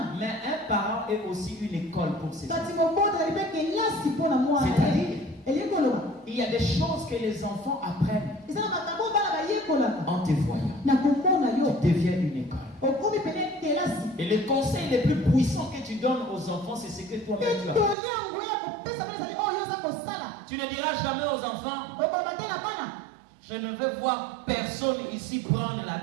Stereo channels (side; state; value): left; drops out; at 17.9 s